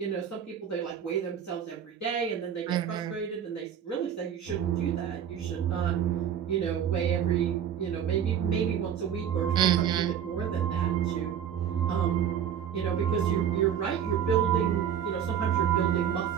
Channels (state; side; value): quieter; left; 8.9 dB